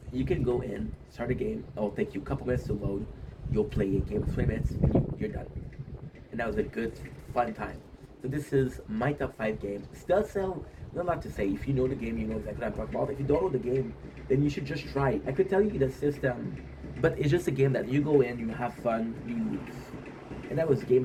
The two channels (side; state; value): both; identical; correlation 1.00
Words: you can go in, start a game. It'll take you a couple minutes to load. You'll play a game of 20 minutes, and you're done. And that was a good, fun time. So this is my top 5 games. Dead Cell, not a lot to say. If you know the game, you know exactly what I'm talking about. If you don't know the game, then you should just try it. I could tell you the system, but it's just a game that you go in, you have fun, you leave. And that was